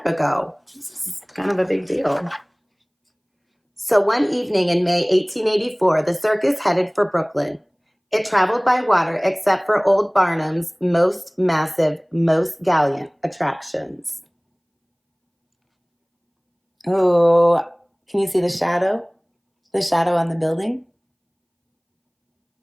ago. This is kind of a big deal. So one evening in May 1884, the circus headed for Brooklyn. It traveled by water except for old Barnum's most massive, most gallant attractions. Oh, can you see the shadow? The shadow on the building?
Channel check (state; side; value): identical; both; correlation 1.00